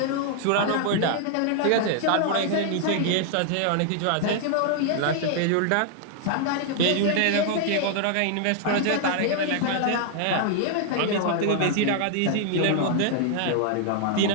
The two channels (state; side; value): different; both; correlation 0.00